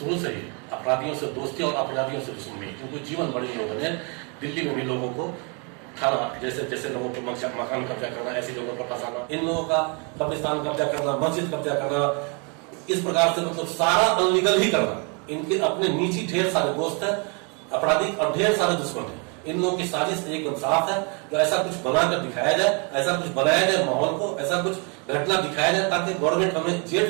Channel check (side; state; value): left; quieter; 34.6 dB